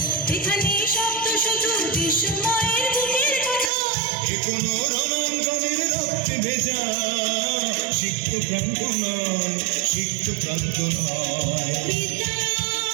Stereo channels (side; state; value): left; drops out; at 3.7 s